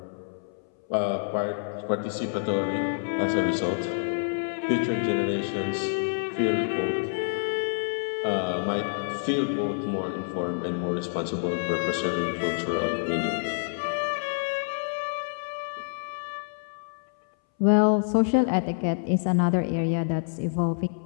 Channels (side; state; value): right; silent; 60 dB below the other